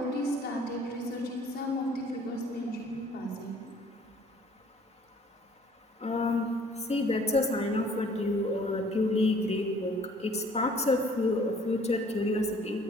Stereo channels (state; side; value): normal; both; correlation 0.56